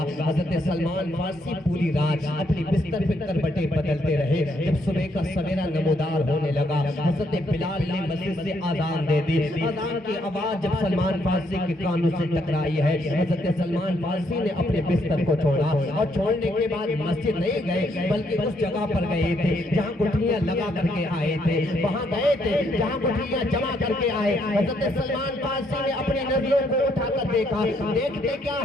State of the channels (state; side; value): normal; both; correlation 0.73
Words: حضرت سلمان فارسی پوری رات اپنی بستر پہ کربٹیں بدلتے رہے. جب صبح کا سویرا نمودار ہونے لگا حضرت بلال نے مسجد سے آذان دے دی. آذان کی آواز جب سلمان فارسی کے کانوں سے ٹکرائی ہے, حضرت سلمان فارسی نے اپنے بستر کو چھوڑا اور چھوڑنے کے بعد مسجد نہیں گئے بلکہ اس جگہ پر گئے تھے جہاں گٹھلیاں لگا کر کے آئے تھے. وہاں گئے تھے جہاں گٹھلیاں جمع کر کے آئے. حضرت سلمان فارسی نے اپنی نظروں کو اٹھا کر دیکھا. دیکھتے کیا